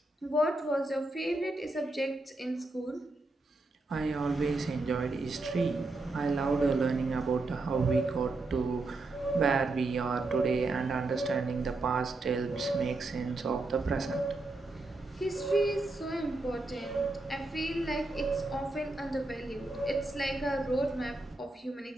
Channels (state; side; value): quieter; left; 3.0 dB